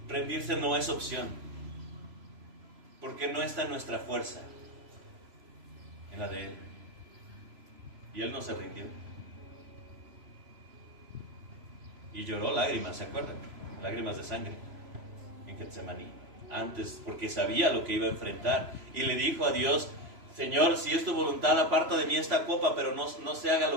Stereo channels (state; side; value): late; left; 3.0 ms